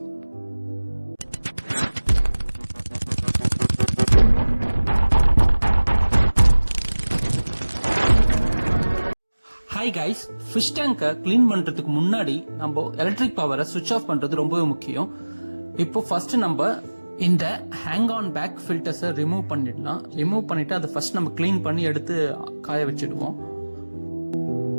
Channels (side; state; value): both; inverted; correlation -1.00